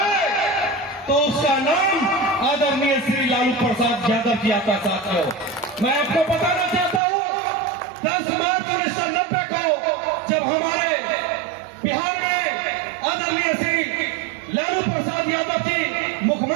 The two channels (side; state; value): left; drops out; at 7.0 s